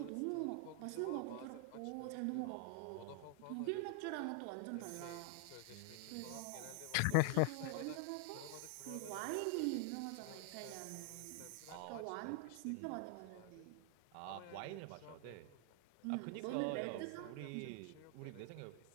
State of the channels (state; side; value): different; both; correlation 0.00